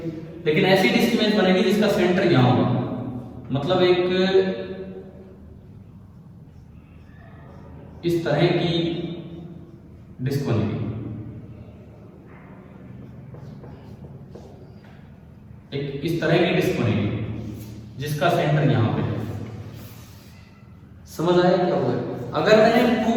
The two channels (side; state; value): both; identical; correlation 1.00